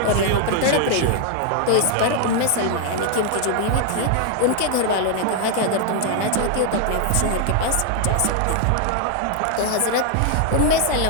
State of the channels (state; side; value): different; both; correlation 0.00